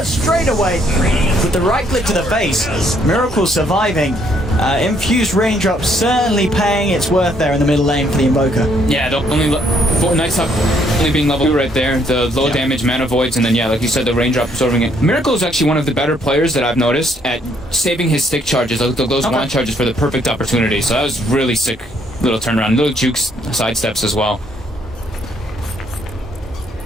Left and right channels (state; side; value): normal; both; correlation 0.68